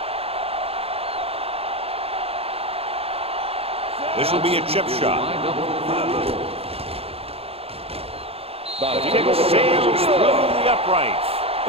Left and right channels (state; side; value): late; left; 0.28 ms